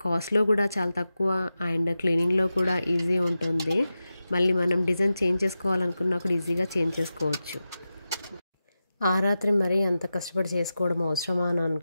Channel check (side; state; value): both; inverted; correlation -0.92